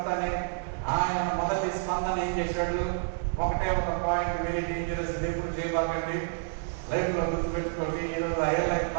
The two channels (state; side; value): silent; left; digital silence